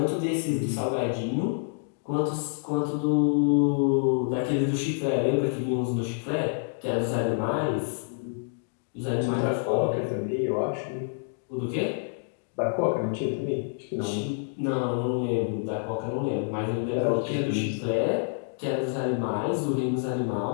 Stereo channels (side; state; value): right; silent; digital silence